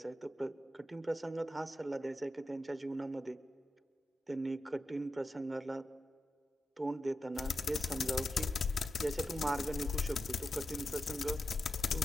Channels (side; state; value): both; normal; correlation 0.89